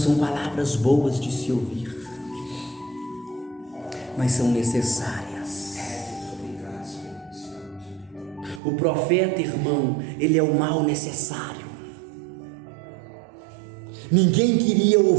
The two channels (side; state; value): left; drops out; at 8.6 s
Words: palavras boas de se ouvir, mas são necessárias. O profeta, irmão, ele é o mal necessário. Ninguém queria